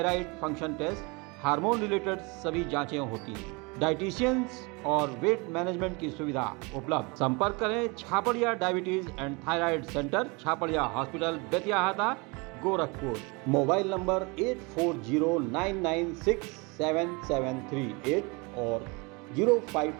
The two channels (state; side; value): quieter; left; 28.3 dB